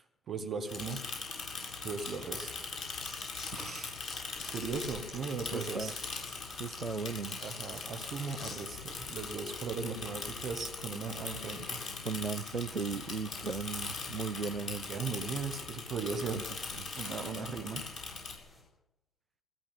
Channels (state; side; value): normal; both; correlation 0.57